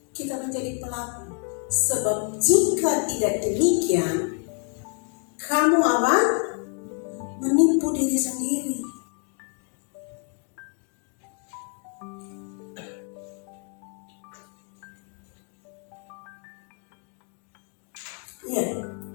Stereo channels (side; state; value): right; quieter; 38.9 dB